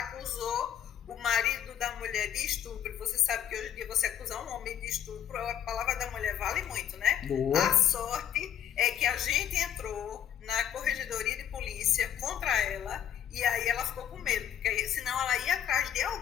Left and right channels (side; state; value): right; quieter; 9.8 dB